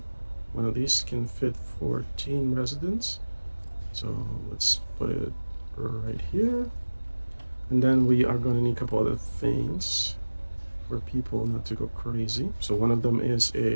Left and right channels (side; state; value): both; inverted; correlation -1.00